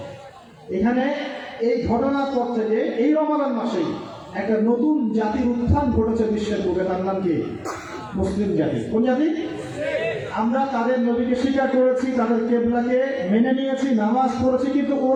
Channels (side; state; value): both; identical; correlation 1.00